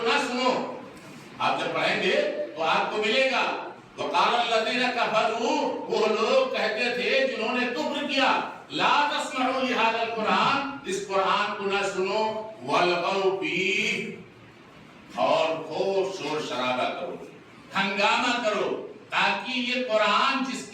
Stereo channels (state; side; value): identical; both; correlation 1.00